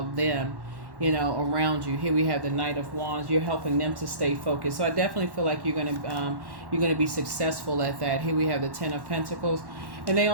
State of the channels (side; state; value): left; late; 1.1 ms